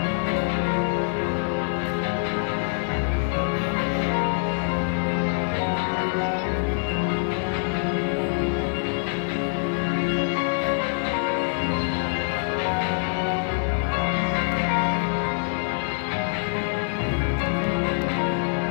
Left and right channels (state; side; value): silent; right; digital silence